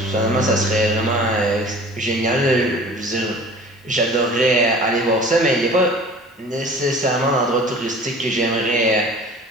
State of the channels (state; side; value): normal; both; correlation 0.44